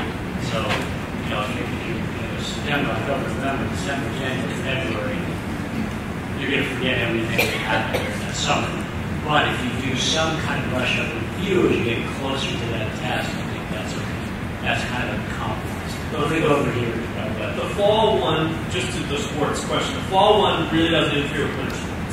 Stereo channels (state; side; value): identical; both; correlation 1.00